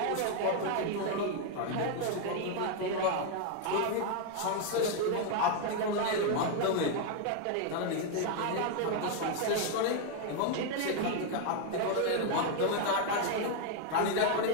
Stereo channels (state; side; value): different; both; correlation 0.01